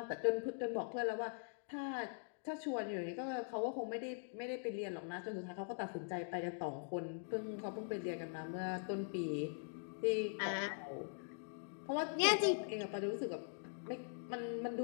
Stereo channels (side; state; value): right; silent; digital silence